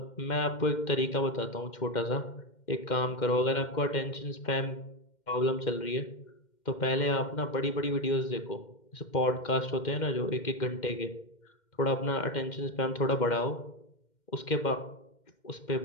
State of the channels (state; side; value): late; right; 2.1 ms